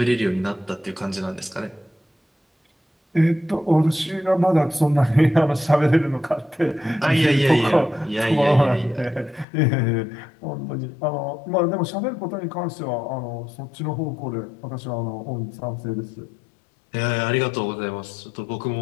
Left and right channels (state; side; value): drops out; right; at 9.5 s